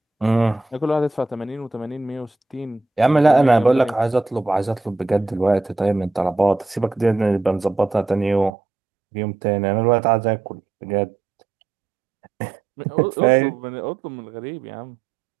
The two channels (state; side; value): drops out; left; at 8.5 s